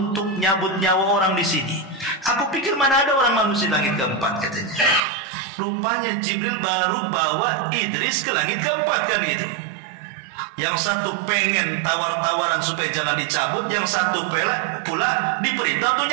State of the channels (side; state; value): left; drops out; at 5.0 s